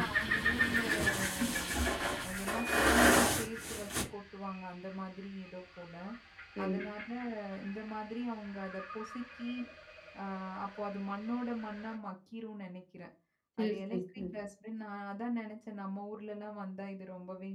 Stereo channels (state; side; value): identical; both; correlation 1.00